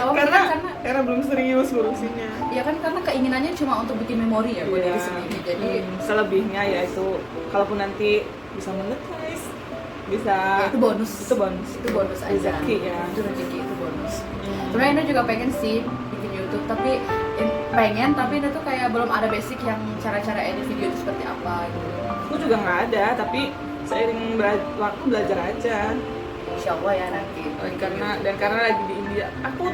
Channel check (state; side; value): noise; left; hum, 29 dB below the sound